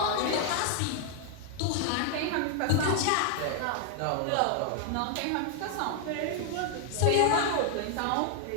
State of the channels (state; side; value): different; both; correlation 0.00